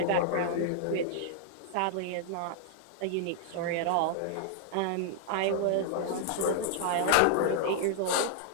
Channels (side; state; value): both; different; correlation -0.01